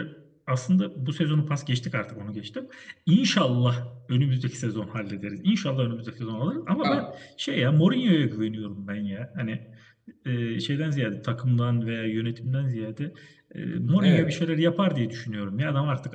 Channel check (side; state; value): both; identical; correlation 1.00